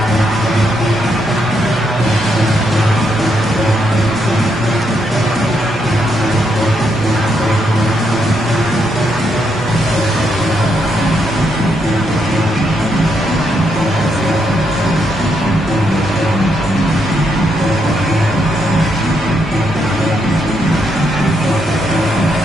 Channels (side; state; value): both; normal; correlation 0.78